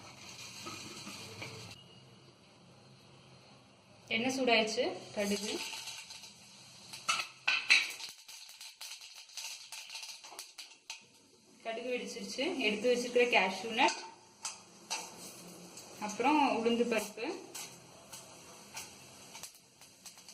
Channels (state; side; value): identical; both; correlation 1.00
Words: எண்ணெய் சூடாயிடுச்சு. கடுகு, கடுகு வெடிச்சிருச்சு. எடுத்து வச்சிருக்கிற கேஷ்யூ நட், அப்புறம் உளுந்து பருப்பு,